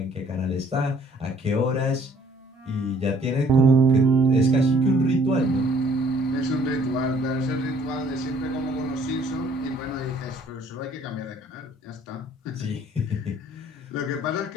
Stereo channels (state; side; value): normal; both; correlation 0.59